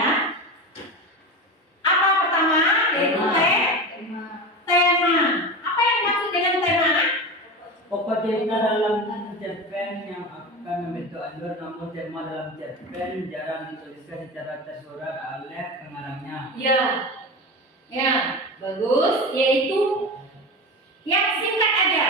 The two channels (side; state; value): both; normal; correlation 0.25